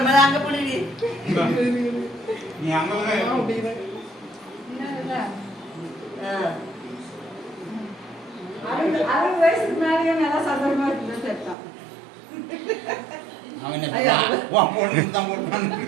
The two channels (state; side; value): drops out; left; at 11.6 s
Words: அங்க புடி நீ அங்க வயசுக்கு மேலேயே நல்லா சந்தோஷமா இருக்குன்னு சேர்த்தான் அவன் என்ன போட்டு தான் போட்டு